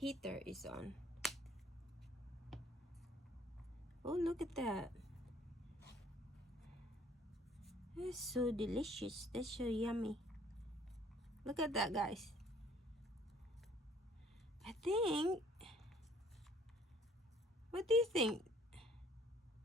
is on. Oh, look at that. That's so delicious. That's so yummy. Look at that, guys. I think, what do you think?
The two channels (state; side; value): normal; both; correlation 0.57